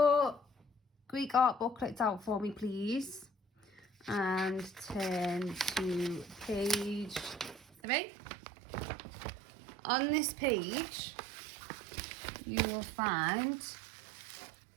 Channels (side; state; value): left; drops out; at 7.7 s